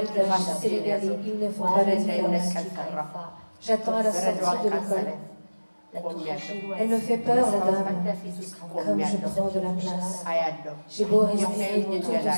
sénégalais. Ils ne font pas la différence. J'attends à la sortie de l'école. Elle me fait peur, la dame, comme je prends de la place. J'ai beau respirer tout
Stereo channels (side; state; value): both; inverted; correlation -1.00